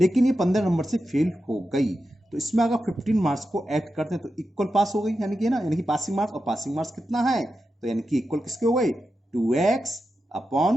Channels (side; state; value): both; normal; correlation 0.90